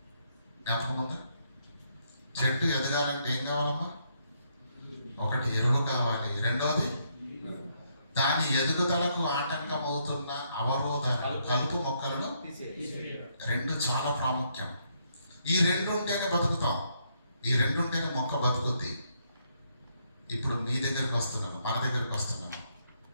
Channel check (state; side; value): inverted; both; correlation -0.74